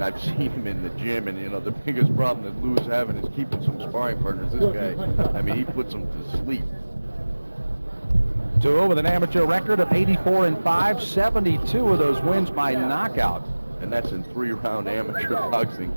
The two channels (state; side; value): inverted; both; correlation -1.00